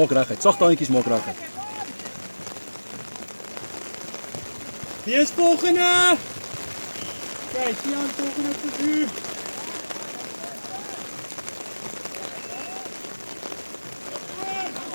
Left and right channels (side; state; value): both; inverted; correlation -1.00